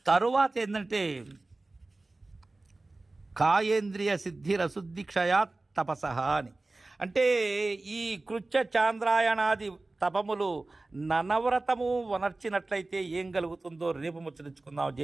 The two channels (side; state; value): left; quieter; 3.1 dB